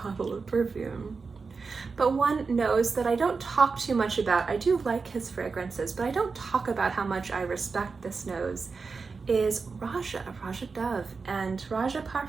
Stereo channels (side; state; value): left; quieter; 4.7 dB